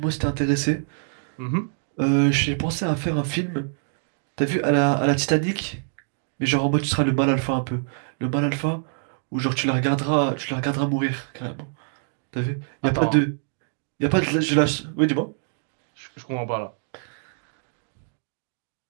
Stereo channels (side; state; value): left; silent; digital silence